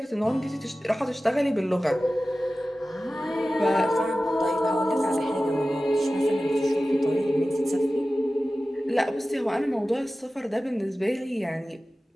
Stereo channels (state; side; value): normal; both; correlation 0.95